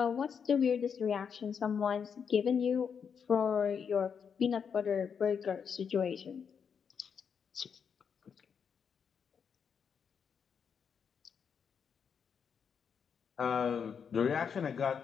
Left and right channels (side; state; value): right; quieter; 6.9 dB